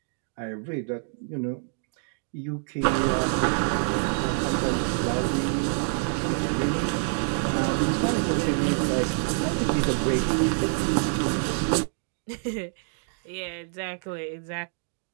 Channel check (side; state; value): left; silent; 60 dB below the other